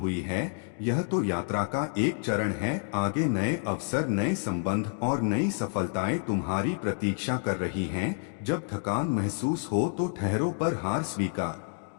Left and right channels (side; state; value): right; silent; 59 dB below the other